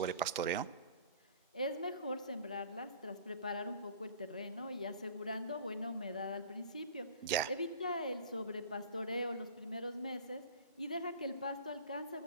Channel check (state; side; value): inverted; both; correlation -0.45